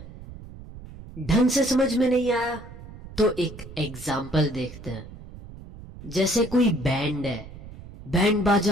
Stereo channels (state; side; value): noise; right; rumble, 16 dB below the sound